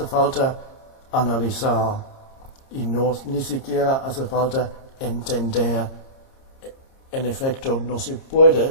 falta analizar y ni siquiera hace falta entender. En efecto, no se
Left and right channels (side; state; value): right; late; 26 ms